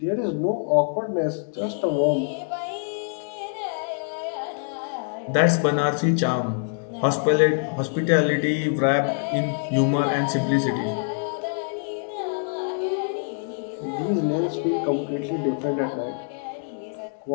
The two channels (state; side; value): silent; right; digital silence